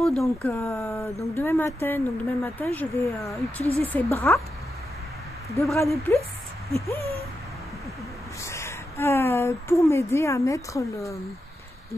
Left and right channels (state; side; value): normal; both; correlation 0.88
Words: Donc demain matin, je vais utiliser ses bras, 2 bras de plus, pour m'aider à mettre